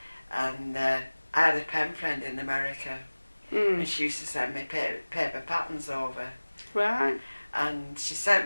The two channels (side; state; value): both; inverted; correlation -1.00